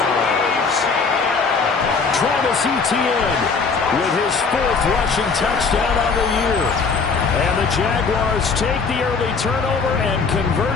Travis Etienne with his 4th rushing touchdown on the year. And the Jaguars take the early turnover and convert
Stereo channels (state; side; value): quieter; right; 4.9 dB